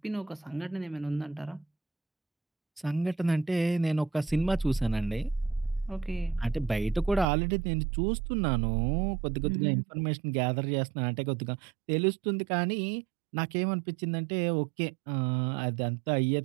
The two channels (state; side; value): drops out; left; at 7.2 s